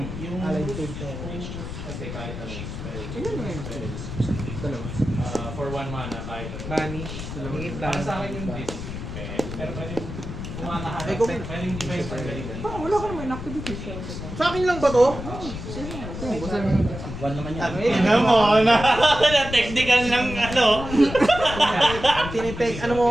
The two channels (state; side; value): noise; left; rumble, 8 dB below the sound